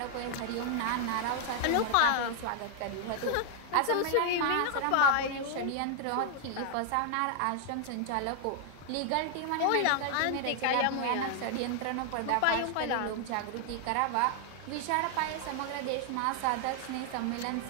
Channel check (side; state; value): both; different; correlation 0.00